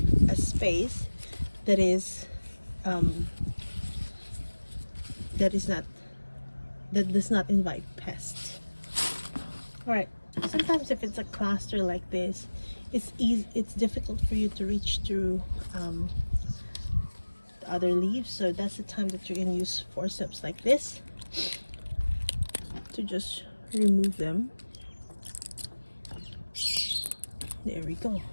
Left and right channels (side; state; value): both; inverted; correlation -1.00